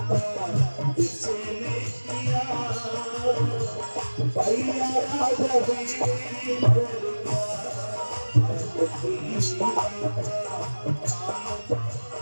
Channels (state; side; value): inverted; both; correlation -1.00